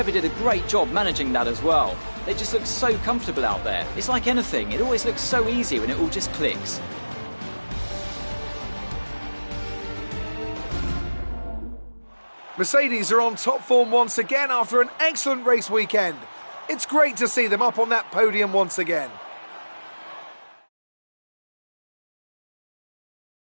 did a great job managing that as well. They just look so comfortable out there. It's like anything, it always looks so easy when it all just clicks. Mercedes are on top form once again after an excellent race weekend. It's great to see them up on that podium once again.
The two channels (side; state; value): both; inverted; correlation -1.00